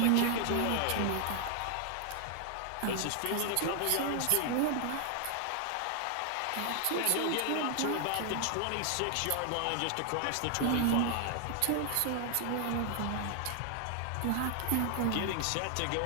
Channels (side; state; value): both; different; correlation 0.00